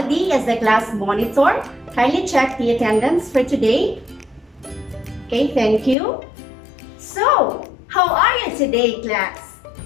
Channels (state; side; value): drops out; right; at 6.0 s